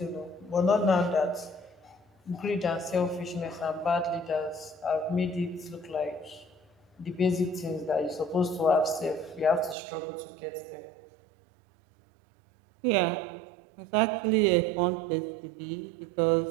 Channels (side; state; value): left; drops out; at 9.8 s